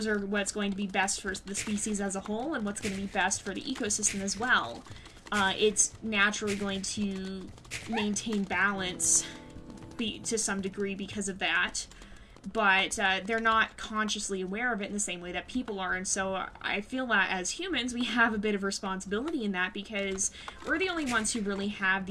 are what's going to be best for the species as a whole, and what's going to be best for the ecosystem as well. It's naturally going to maintain balance to some degree because of that. But they're not consciously aware of it in the same way that people are, and so I feel that as humans we have a bit of responsibility in that, because we're the only ones who really have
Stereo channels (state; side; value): identical; both; correlation 1.00